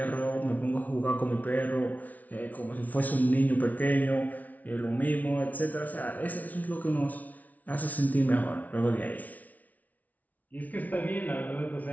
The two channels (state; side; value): late; right; 0.074 ms